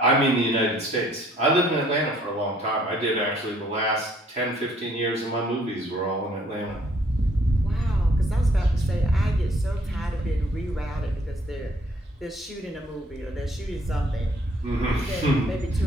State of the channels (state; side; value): normal; both; correlation 0.62